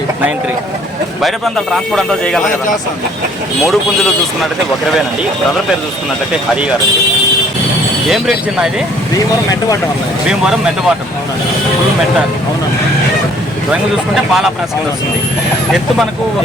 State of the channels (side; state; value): both; normal; correlation 0.59